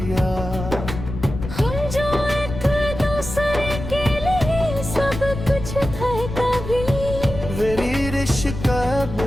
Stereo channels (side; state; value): left; noise; rumble, 8 dB below the sound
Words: हम जो एक दूसरे के लिए सब कुछ थे कभी, मेरी रिश्क अब